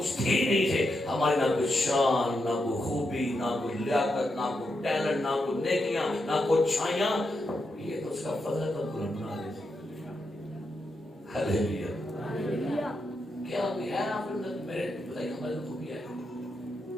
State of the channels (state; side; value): normal; both; correlation 0.85